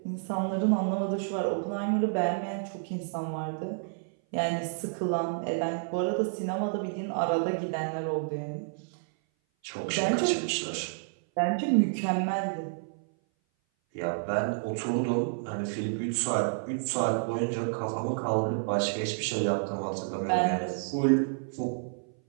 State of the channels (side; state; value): left; silent; 57 dB below the other